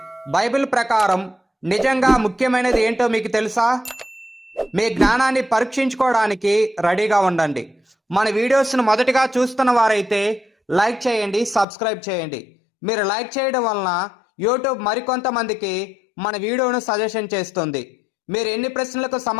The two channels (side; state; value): right; drops out; at 11.7 s